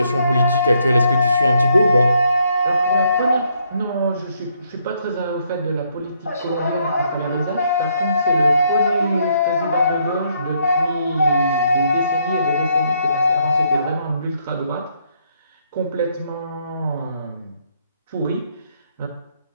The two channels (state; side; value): inverted; both; correlation -0.73